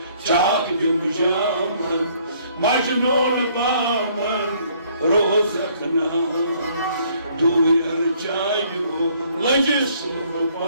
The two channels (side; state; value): both; inverted; correlation -0.63